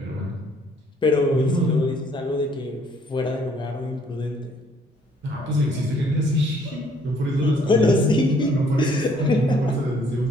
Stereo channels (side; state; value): both; normal; correlation 0.63